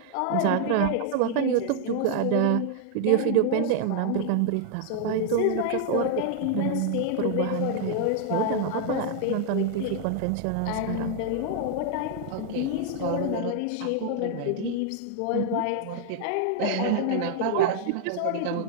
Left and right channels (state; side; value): different; both; correlation 0.00